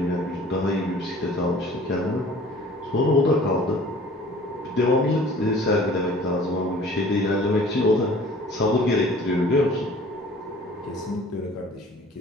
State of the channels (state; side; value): normal; both; correlation 0.49